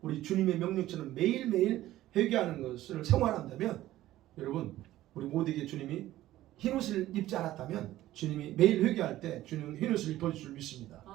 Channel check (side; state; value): left; quieter; 14.9 dB